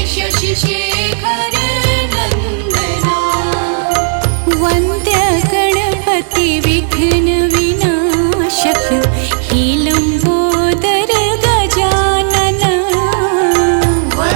शशि शेखर नंदना। वन्द्य गणपति विघ्न विनाशक हे लंबोदर गजानन।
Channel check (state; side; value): silent; left; digital silence